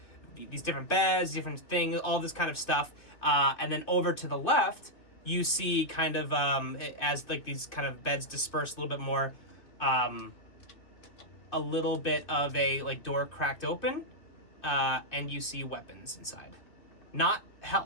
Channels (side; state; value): right; late; 2.7 ms